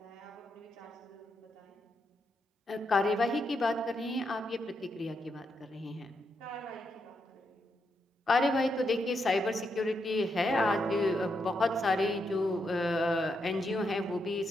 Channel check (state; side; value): normal; both; correlation 0.82